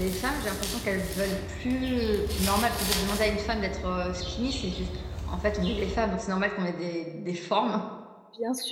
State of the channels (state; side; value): identical; both; correlation 1.00